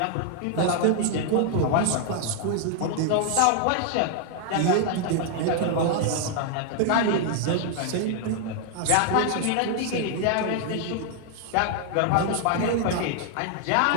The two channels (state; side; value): different; both; correlation 0.00